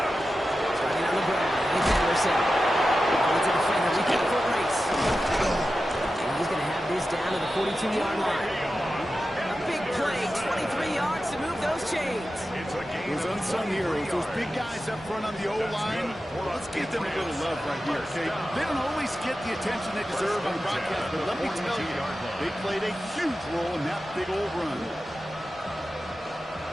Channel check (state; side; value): normal; both; correlation 0.92